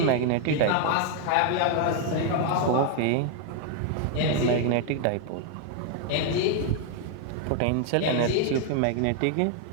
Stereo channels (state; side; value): different; both; correlation 0.00